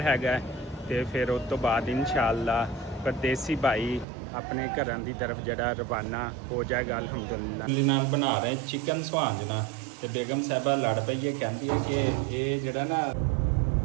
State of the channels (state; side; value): drops out; left; at 4.0 s